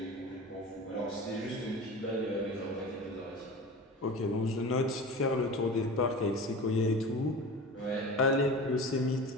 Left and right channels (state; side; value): normal; both; correlation 0.33